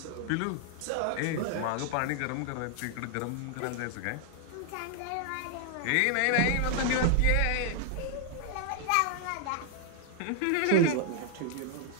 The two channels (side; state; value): both; different; correlation 0.00